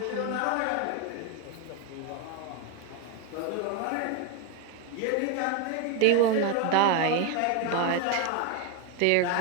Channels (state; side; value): different; both; correlation 0.02